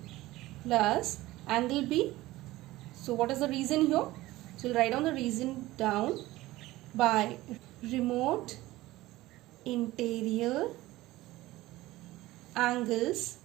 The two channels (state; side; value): quieter; left; 17.6 dB